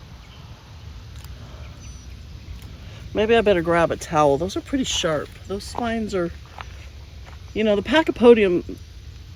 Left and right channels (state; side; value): identical; both; correlation 1.00